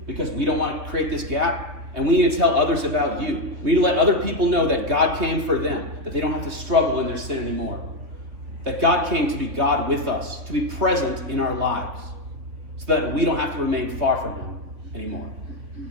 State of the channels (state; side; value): late; left; 3.6 ms